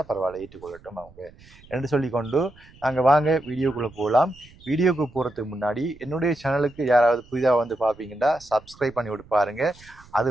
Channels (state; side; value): noise; right; rumble, 24 dB below the sound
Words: பரவாயில்ல, ஏற்றுக்கொள்ளட்டும் அவங்க என்று சொல்லிக்கொண்டு நாங்க வாங்க வீடியோக்குள்ள போகலாம். வீடியோக்கு போறதுக்கு முன்னாடி என்னுடைய சேனலுக்கு யாராவது புதிதாக வந்து பார்ப்பீங்கன்னா சப்ஸ்கிரைப் பண்ணி விட்டு பாருங்க. அது